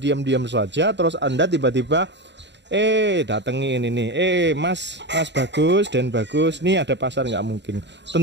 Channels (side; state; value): left; late; 0.52 ms